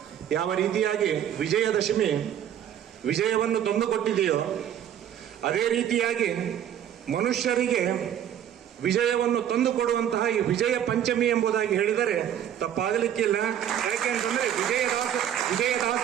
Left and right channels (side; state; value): left; quieter; 10.1 dB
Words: ಯಾವ ರೀತಿಯಾಗಿ ವಿಜಯದಶಮಿ ವಿಜಯವನ್ನು ತಂದುಕೊಟ್ಟಿದೆಯೋ ಅದೇ ರೀತಿಯಾಗಿ ಮನುಷ್ಯರಿಗೆ ವಿಜಯವನ್ನು ತಂದುಕೊಡುವಂತಹ ಈ ವಿಜಯ ಪಂಚಮಿ ಎಂಬುದಾಗಿ ಹೇಳಿದರೆ ತಪ್ಪಾಗಲಿಕ್ಕಿಲ್ಲ. ಯಾಕೆ ಅಂತಂದ್ರೆ